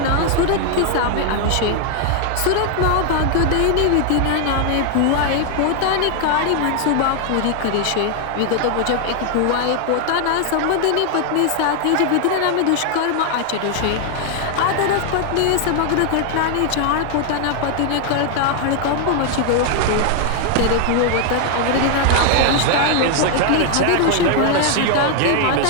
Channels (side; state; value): both; different; correlation 0.00